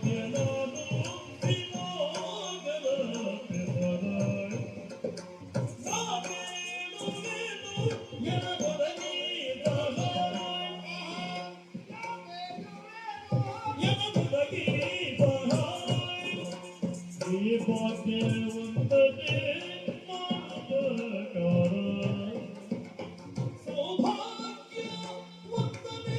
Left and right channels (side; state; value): both; identical; correlation 1.00